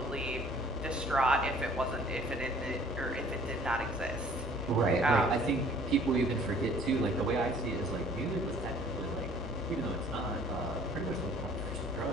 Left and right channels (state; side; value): normal; both; correlation 0.54